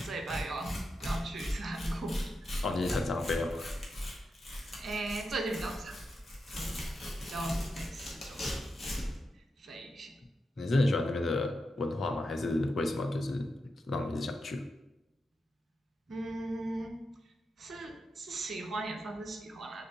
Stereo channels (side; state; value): both; normal; correlation 0.87